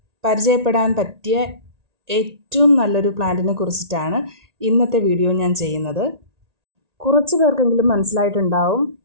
പരിചയപ്പെടാൻ പറ്റിയ ഏറ്റവും നല്ലൊരു പ്ലാന്റിനെ കുറിച്ചിട്ടാണ് ഇന്നത്തെ വീഡിയോ ഞാൻ ചെയ്യുന്നത്. കുറച്ച് പേർക്കെങ്കിലും മനസ്സിലായിട്ടുണ്ടാവും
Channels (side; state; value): left; late; 1.8 ms